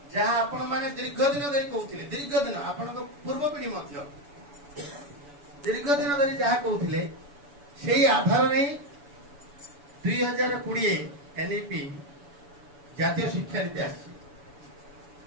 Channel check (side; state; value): left; late; 7.0 ms